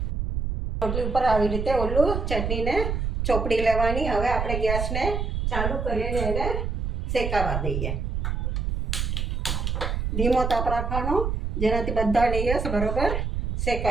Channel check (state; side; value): noise; right; rumble, 1 dB below the sound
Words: રોટલી ઉપર આવી રીતે ઓલું ચટણીને ચોપડી લેવાની. હવે આપણે ગેસને ચાલુ કરીને એને શેકાવા દઈએ. ધીમો તાપ રાખવાનો, જેનાથી બધા લેયર્સ બરોબર